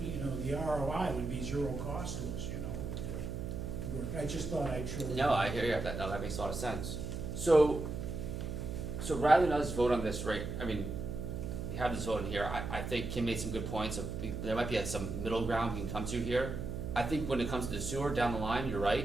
the ROI would be zero cost to us, with the work. I just thought I'd show. No, I hear you, that makes a lot of sense. So rather than us vote on this, right, we have this vote in here, I think Kim made some good points of, there might be some middle ground we can come to here. I think when it comes to the sewer down the line, you're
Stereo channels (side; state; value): right; noise; hum, 4 dB below the sound